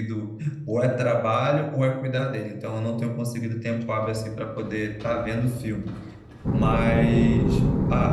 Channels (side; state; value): both; identical; correlation 1.00